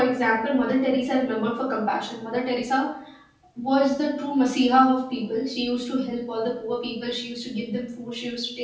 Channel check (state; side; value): identical; both; correlation 1.00